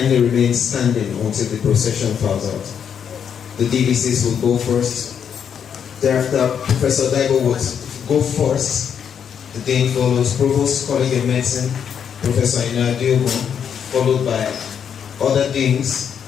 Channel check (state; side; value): quieter; right; 7.9 dB